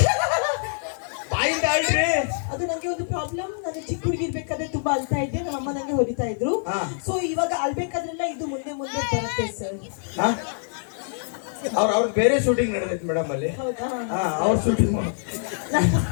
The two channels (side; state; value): right; silent; digital silence